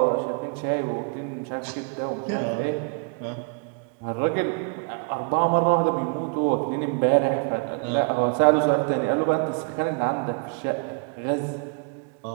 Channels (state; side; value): quieter; left; 37.3 dB